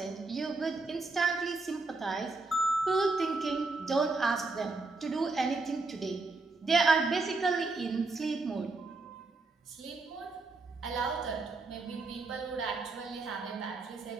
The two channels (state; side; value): quieter; left; 3.6 dB